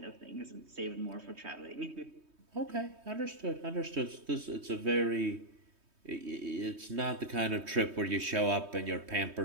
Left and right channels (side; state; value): left; late; 3.2 ms